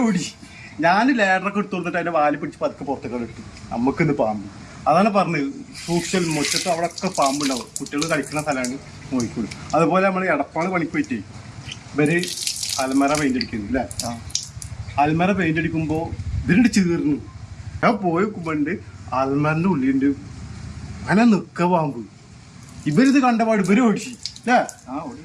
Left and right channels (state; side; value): identical; both; correlation 1.00